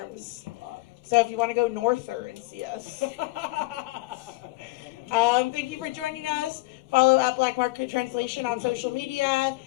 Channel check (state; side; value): quieter; right; 22.2 dB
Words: So if you want to go norther and see us. Thank you for joining us. Follow at Black Market Translation on social media.